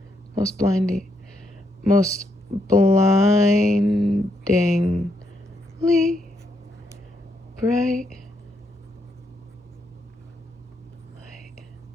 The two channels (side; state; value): both; normal; correlation 0.77